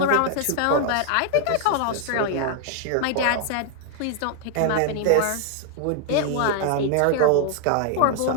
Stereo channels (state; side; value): different; both; correlation 0.00